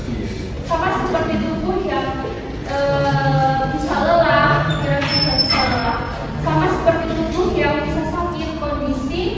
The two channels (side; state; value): both; identical; correlation 1.00